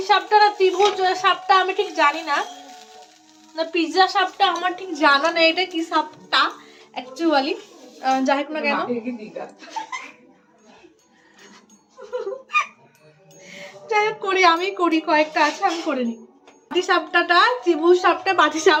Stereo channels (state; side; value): identical; both; correlation 1.00